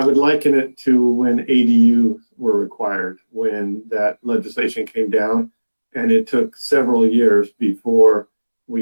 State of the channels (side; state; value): both; inverted; correlation -1.00